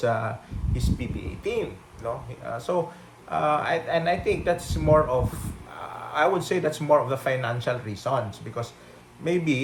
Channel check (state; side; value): identical; both; correlation 1.00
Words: PBA team, no? I think that's more of I would say that's more of the financial reasons, because